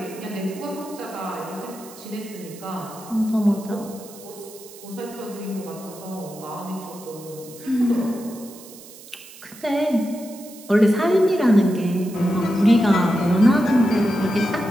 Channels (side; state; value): right; noise; hiss, 18 dB below the sound